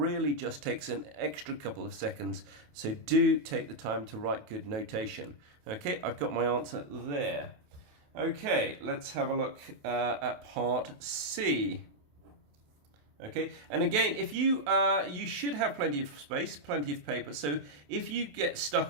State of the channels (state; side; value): late; left; 28 ms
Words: just takes an extra couple of seconds, so do take the time to write good notation. Okay, I've got my answer there. Okay, let's have a look at part C. Okay, and again, if you should have plenty of space, plenty of paper, so if you get